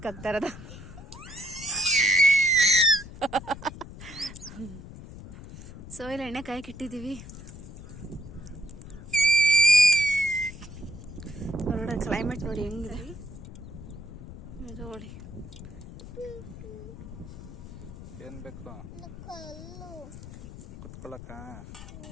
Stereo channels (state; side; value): noise; left; rumble, 13 dB below the sound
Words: ಹಾಕ್ತಾರದ. ಸೊ ಇಲ್ಲಿ ಎಣ್ಣೆ ಕಾಯಕ್ಕೆ ಇಟ್ಟಿದ್ದೀವಿ. ಹೊರಗಡೆ ಕ್ಲೈಮೇಟ್ ನೋಡಿ ಹೆಂಗಿದೆ ನೋಡಿ. ಏನ್ ಬೇಕು ಕಲ್ಲು. ಕುತ್ಕೊಳಕ?